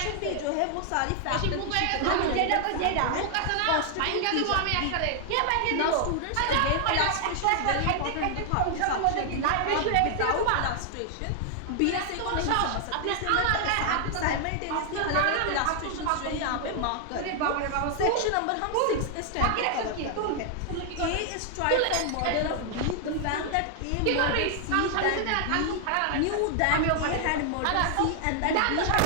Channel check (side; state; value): both; different; correlation 0.00